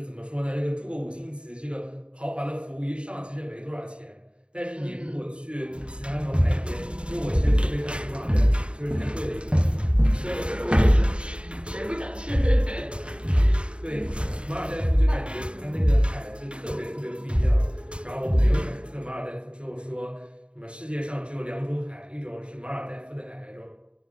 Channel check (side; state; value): left; late; 0.054 ms